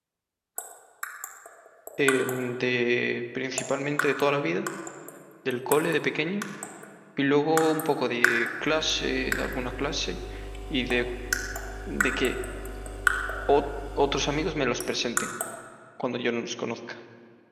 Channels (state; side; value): identical; both; correlation 1.00